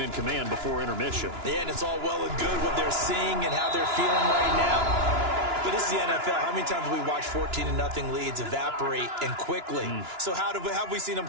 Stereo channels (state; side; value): late; left; 2.9 ms